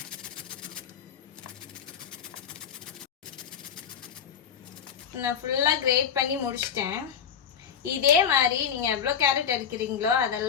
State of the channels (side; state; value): right; quieter; 7.8 dB